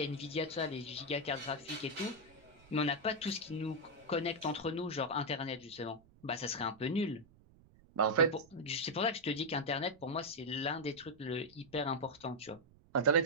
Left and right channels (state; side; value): noise; right; rumble, 26 dB below the sound